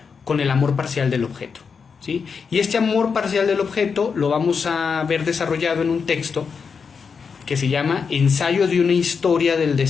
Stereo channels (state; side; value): quieter; right; 5.8 dB